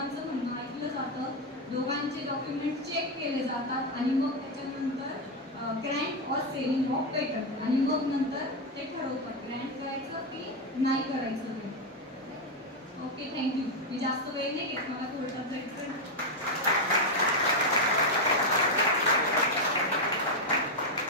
म्हणणं ऐकलं जातं, दोघांचे डॉक्युमेंट चेक केले जातात आणि मग त्याच्यानंतर Grant or selling of patent आणि मग नंतर ते ठरवतात ग्रँट करायचं की नाही करायचं ते. Okay, thank you. मी जास्त वेळ नाही घेत, मला कोर्टात जायचं.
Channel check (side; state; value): both; normal; correlation 0.05